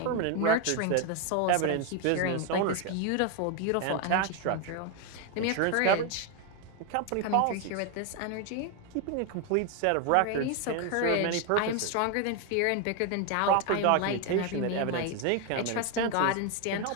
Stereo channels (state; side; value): different; both; correlation 0.01